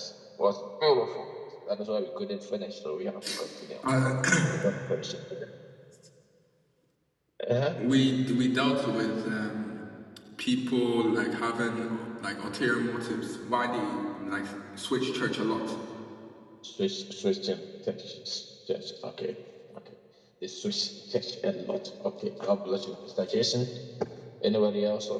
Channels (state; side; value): identical; both; correlation 1.00